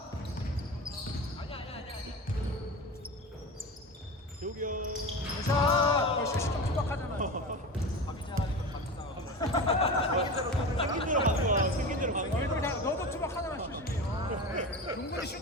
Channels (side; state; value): both; normal; correlation 0.28